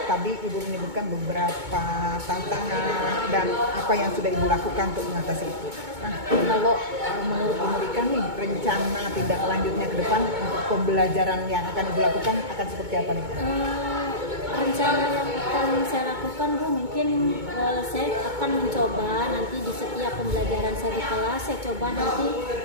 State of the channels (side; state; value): left; late; 2.2 ms